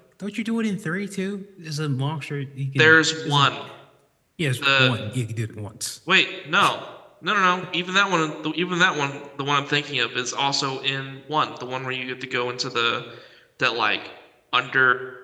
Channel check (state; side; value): identical; both; correlation 1.00